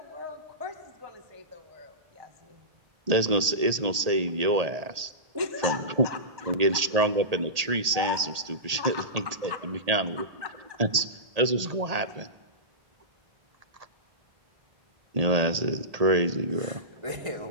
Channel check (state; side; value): late; left; 1.8 ms